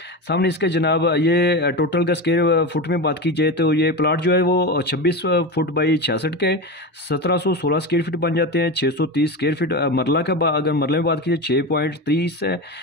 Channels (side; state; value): both; normal; correlation 0.22